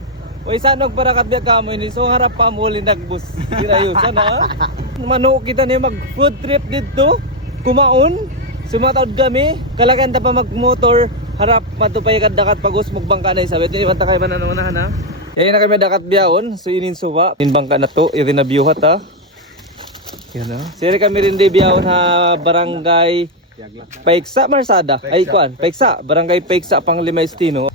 Uy, saan parakat biya kamo ini? So harap pa mo lindagbus. Kirayusan ha? Mano kita niya mag food trip dito. Kumaon. Sumatawad kami. Kalakan ta pa mag-motor. Harap matupay kad dakat pagos magbangka na isabit. Ini banta kay manan ha. Yayin na kami dakat biyaon. So inin suba. In bangka na to. Iri na biyuhat ha. Yan ha. Siri kami rin di biyaon ha barangay Paiksa Marsada. Ay kuan, Paiksa, barangay Paiksa Panglima Estino.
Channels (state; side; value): normal; both; correlation 0.03